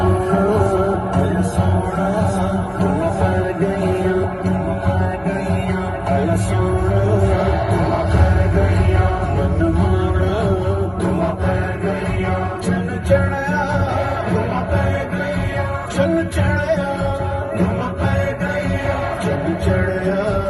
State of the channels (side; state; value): both; identical; correlation 1.00